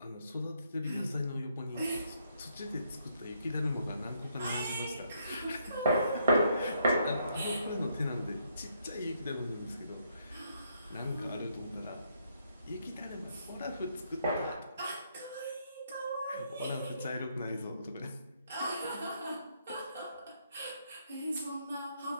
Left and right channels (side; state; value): both; inverted; correlation -0.73